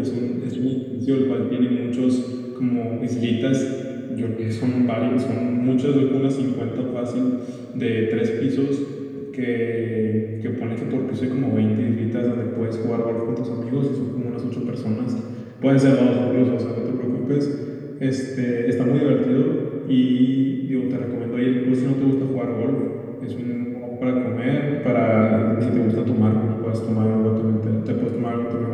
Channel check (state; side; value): identical; both; correlation 1.00